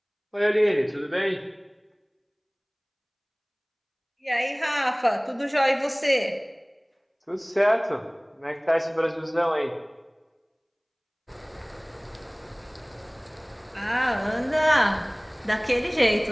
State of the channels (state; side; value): identical; both; correlation 1.00